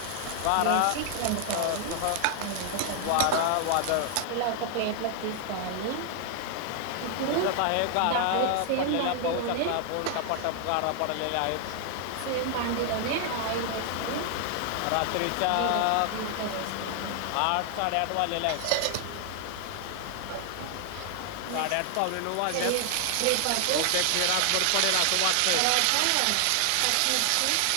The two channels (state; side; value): different; both; correlation 0.00